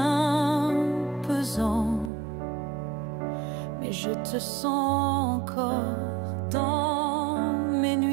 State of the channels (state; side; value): drops out; left; at 2.1 s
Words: pesant. Mais je te sens encore dans mes